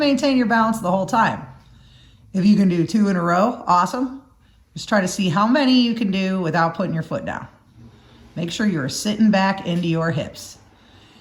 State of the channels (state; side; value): identical; both; correlation 1.00